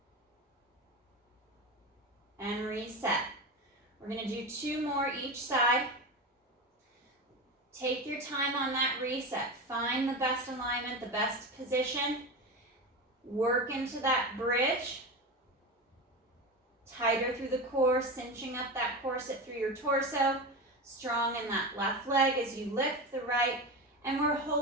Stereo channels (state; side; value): normal; both; correlation 0.23